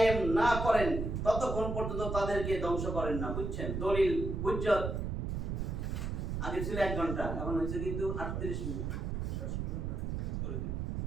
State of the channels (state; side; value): noise; right; rumble, 2 dB below the sound